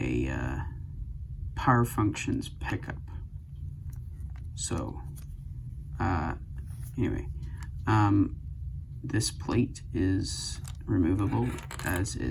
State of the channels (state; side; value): identical; both; correlation 1.00